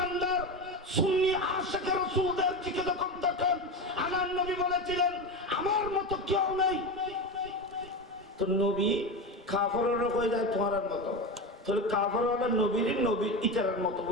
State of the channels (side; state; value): both; normal; correlation 0.21